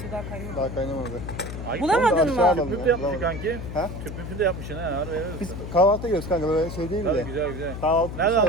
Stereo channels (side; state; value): left; noise; hum, 8 dB below the sound